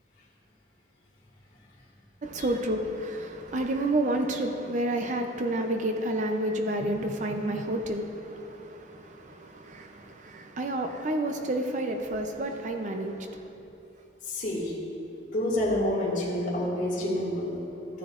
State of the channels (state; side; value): normal; both; correlation 0.42